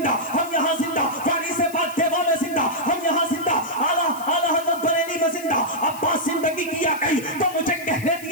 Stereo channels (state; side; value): noise; left; hiss, 16 dB below the sound